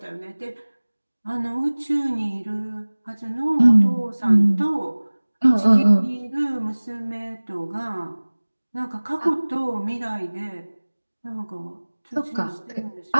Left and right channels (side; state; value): both; inverted; correlation -1.00